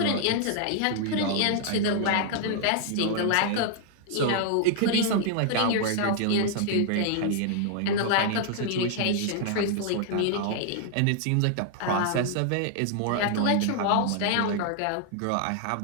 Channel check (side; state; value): both; different; correlation 0.00